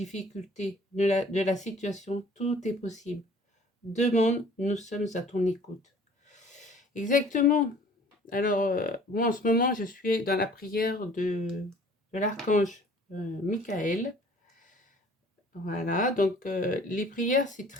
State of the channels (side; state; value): both; normal; correlation 0.52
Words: de la situation, tout est possible. Demande, nous sommes à ton écoute. Exactement. Alors, moi en ce moment, je suis dans la prière de l'archange Michael. Voilà, donc les prières, c'est